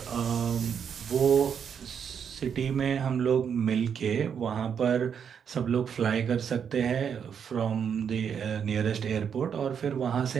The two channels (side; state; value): left; quieter; 7.5 dB